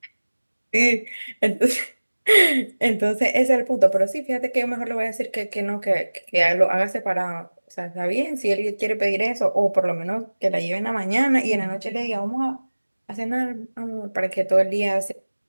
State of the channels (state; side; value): inverted; both; correlation -1.00